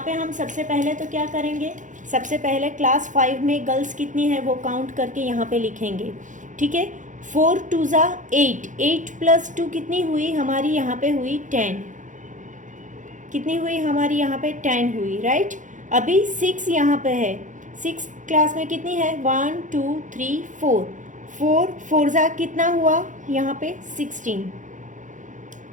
पे हम सबसे पहले तो क्या करेंगे, सबसे पहले क्लास 5 में गर्ल्स कितनी है वो काउंट करके यहाँ पे लिखेंगे, ठीक है। 4 2 ज़ा 8, 8 + 2 कितनी हुई हमारी, यहाँ पे हुई 10, कितनी हुई हमारी यहाँ पे 10 हुई, राइट। अभी 6 यहाँ पे है, 6 क्लास में कितनी है, 1 2 3 4, 4 4 ज़ा कितना हुआ यहाँ पे 16,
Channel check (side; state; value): left; late; 0.37 ms